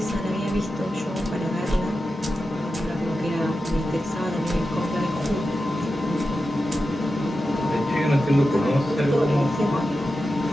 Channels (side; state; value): both; normal; correlation 0.91